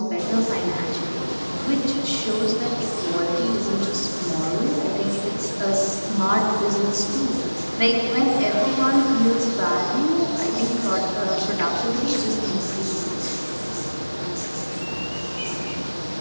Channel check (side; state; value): both; inverted; correlation -1.00